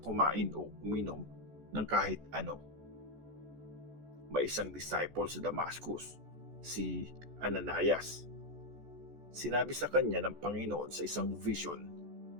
o uminom ng kahit ano. May isang disciple sa Damascus, si Ananias. Sinabi sa kanya ng Panginoon sa isang vision,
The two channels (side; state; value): left; late; 14 ms